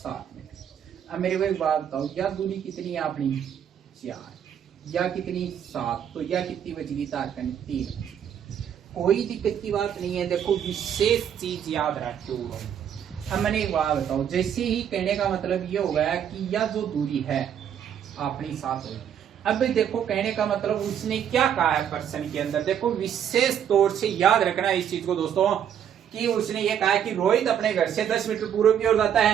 मीटर। अब मेरे को एक बात बताओ, या दूरी कितनी है अपनी, 4, या कितनी, 7, तो या कितनी बच गई, तारकन 3। कोई दिक्कत की बात नहीं है। देखो विशेष चीज याद रखो। अब मैंने एक बात बताओ, जैसे ही कहने का मतलब ये हो गया कि यह जो दूरी है अपनी 7 हुई। अब देखो कहने का मतलब उसने क्या कहा है प्रश्न के अंदर, देखो विशेष तौर से याद रखना इस चीज को दोस्तों, कि उसने ये कहा कि रोहित अपने घर से 10 मीटर पूर्व की ओर जाता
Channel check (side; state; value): left; quieter; 9.1 dB